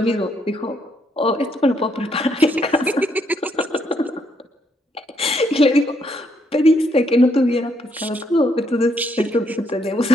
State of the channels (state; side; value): normal; both; correlation 0.73